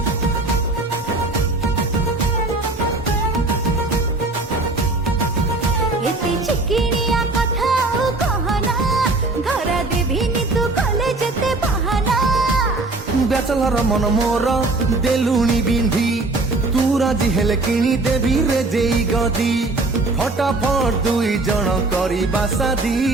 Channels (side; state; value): left; quieter; 3.2 dB